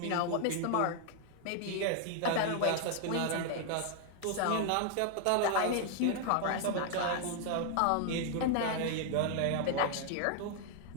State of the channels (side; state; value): both; different; correlation 0.00